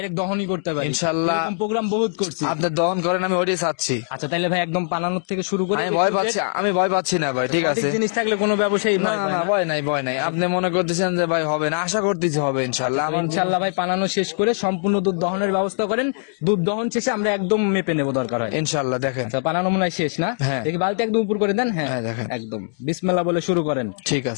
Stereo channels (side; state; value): right; silent; digital silence